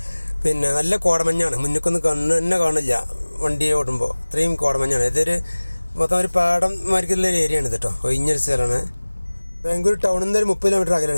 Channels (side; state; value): both; inverted; correlation -1.00